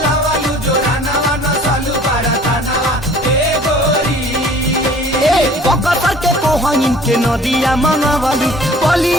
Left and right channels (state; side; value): normal; both; correlation 0.50